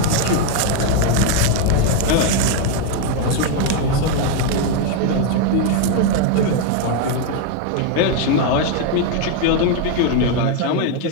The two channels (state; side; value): different; both; correlation 0.01